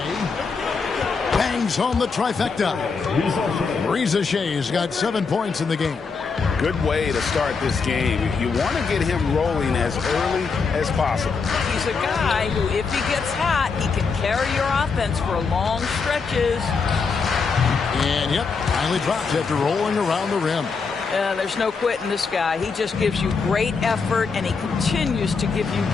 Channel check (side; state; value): right; quieter; 5.0 dB